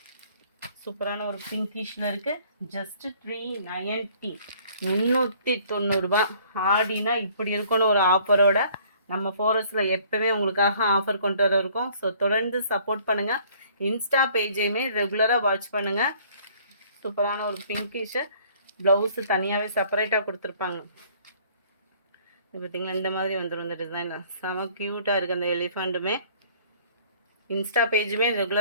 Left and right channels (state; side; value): inverted; both; correlation -0.57